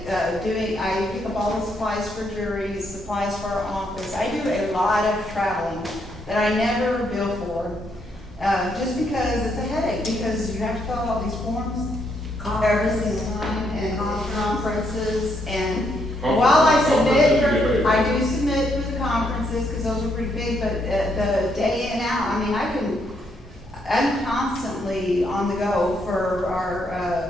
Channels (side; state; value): both; normal; correlation 0.75